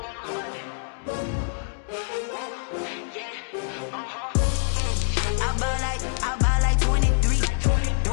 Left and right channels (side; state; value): right; silent; digital silence